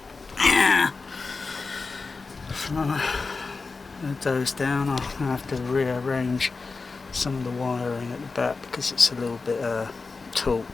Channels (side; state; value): right; quieter; 4.2 dB